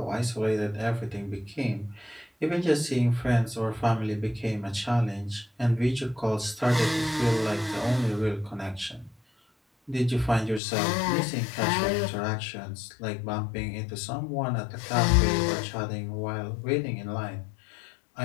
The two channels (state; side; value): drops out; right; at 10.6 s